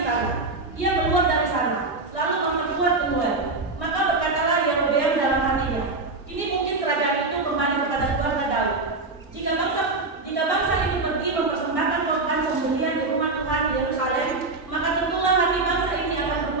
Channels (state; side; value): quieter; left; 3.5 dB